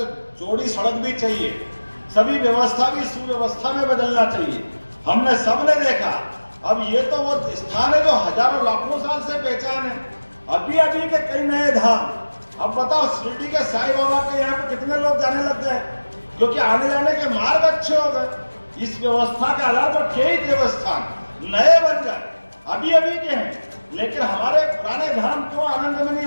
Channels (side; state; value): both; inverted; correlation -1.00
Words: चौड़ी सड़क भी चाहिए, सभी व्यवस्था भी सुव्यवस्था में बदलना चाहिए। हमने सबने देखा, अब ये तो वो स्थान है जो हजारों लाखों साल से पहचान है। अभी के कई नए धाम, अब बताओ शिरडी के साईं बाबा के यहाँ पे कितने लोग जाने लग गए, क्योंकि आने जाने के मार्ग अच्छे हो गए। इस व्यवस्था के आधार पर कई देवस्थान नए बन गए, अभी के हैं, लेकिन हमारे पुराने धाम क्यों आनंद में नहीं